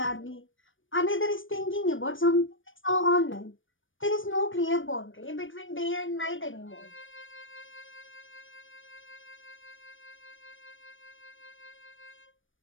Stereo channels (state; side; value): late; right; 0.57 ms